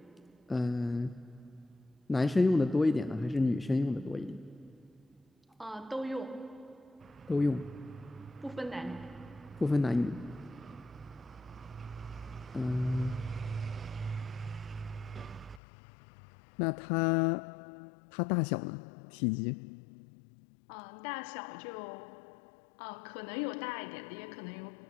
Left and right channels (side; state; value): right; drops out; at 15.6 s